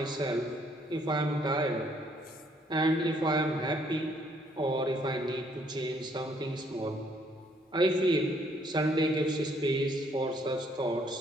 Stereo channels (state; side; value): normal; both; correlation 0.67